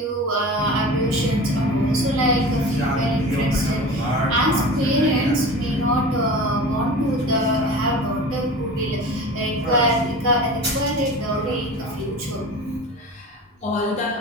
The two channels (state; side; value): normal; both; correlation 0.35